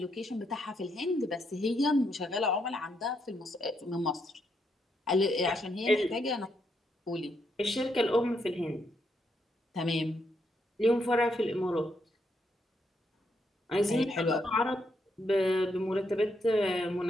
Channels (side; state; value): both; normal; correlation 0.78